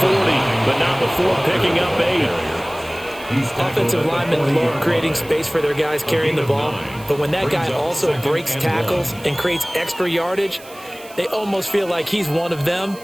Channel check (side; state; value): right; noise; hiss, 21 dB below the sound